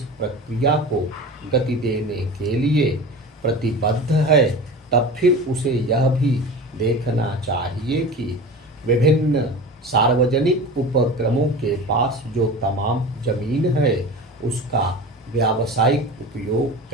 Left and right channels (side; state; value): both; normal; correlation 0.33